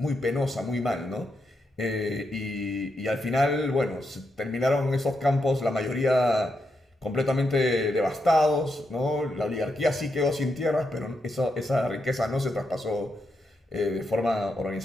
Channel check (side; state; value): both; normal; correlation 0.83